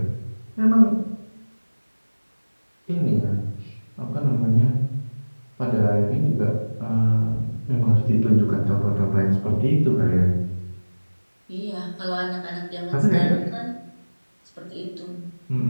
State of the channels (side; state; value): both; inverted; correlation -1.00